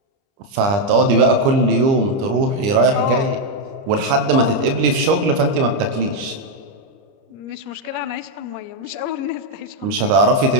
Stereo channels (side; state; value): left; late; 30 ms